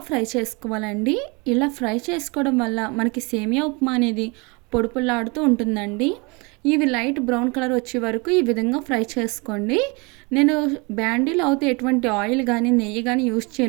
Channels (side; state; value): left; quieter; 28.7 dB